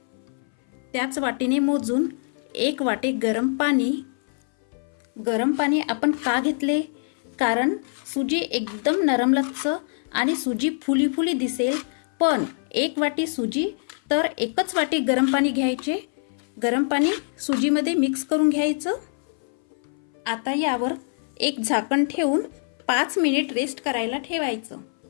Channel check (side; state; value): right; silent; 59 dB below the other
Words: त्याच वाटीने मोजून 1 वाटी गरम पाणी. गरम पाणी आपण का घेतले? कारण सुजी एकदम नरमलच्च आणि सुजी फुली फुली दिसेल. पण 1 वाटी सुजी तर 1च वाटी गरम पाणी घ्यायचे. गरम पाणी सुजीमध्ये मिक्स करून घ्यायचं. आता यावर एक झाकण ठेवून 5 मिनिट रेस्ट करायला ठेवायचं.